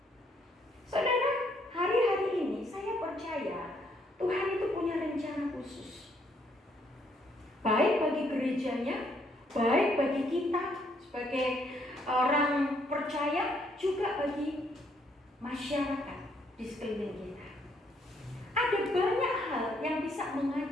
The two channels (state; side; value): normal; both; correlation 0.70